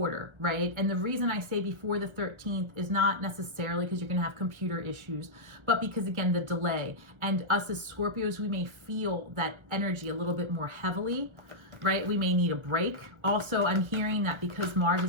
right? And the reason I say before the 13th is not necessarily because you're going to have computer issues, but because, again, the delay. And us as Scorpios, we may feel that energy a little bit more heavily, right? We may need a break. Also, I'm hearing that because Mars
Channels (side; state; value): left; late; 1.3 ms